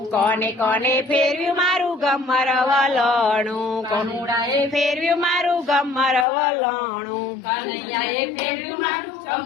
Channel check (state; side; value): drops out; right; at 6.2 s